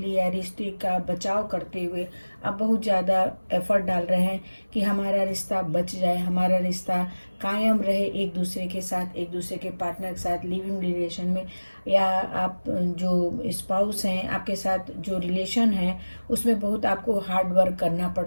या रिश्ते का बचाव करते हुए आप बहुत ज़्यादा एफर्ट डाल रहे हैं कि हमारा रिश्ता बच जाए, हमारा रिश्ता कायम रहे एक दूसरे के साथ, एक दूसरे के पार्टनर के साथ लिविंग रिलेशन में, या आप जो स्पाउस हैं आपके साथ जो रिलेशन है उसमें बहुत आपको हार्ड वर्क करना पड़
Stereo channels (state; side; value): inverted; both; correlation -1.00